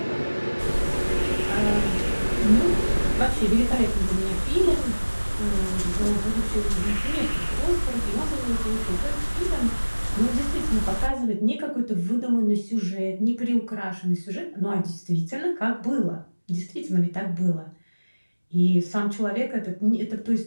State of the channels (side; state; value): both; inverted; correlation -1.00